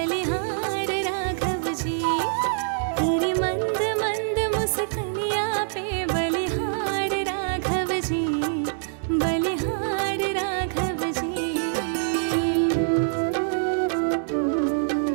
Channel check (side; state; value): left; silent; digital silence